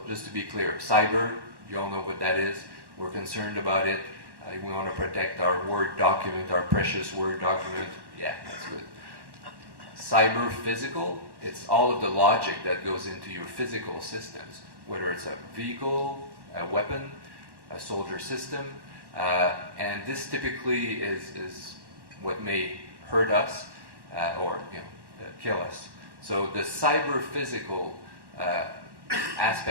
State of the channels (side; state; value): left; late; 1.1 ms